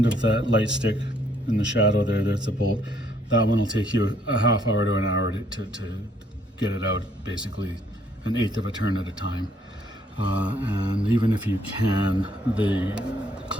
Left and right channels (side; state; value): both; normal; correlation 0.67